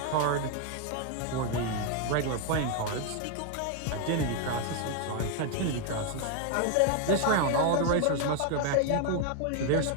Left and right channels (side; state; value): both; different; correlation 0.01